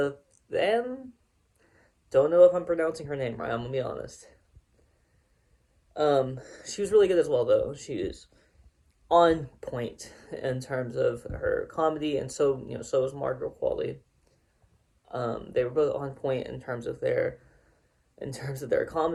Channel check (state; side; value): identical; both; correlation 1.00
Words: Don't know if I'm pronouncing her name right, I'm gonna be honest. She was really good as well, though. She is on point in terms of her comedy, and so was Margaret Qualley. They were both on point in terms of their